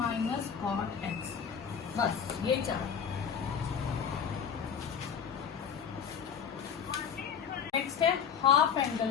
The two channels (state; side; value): quieter; right; 7.3 dB